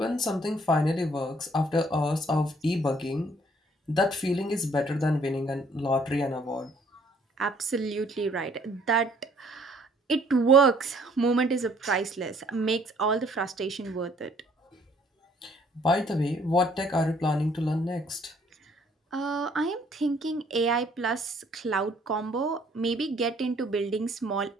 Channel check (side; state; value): both; normal; correlation 0.61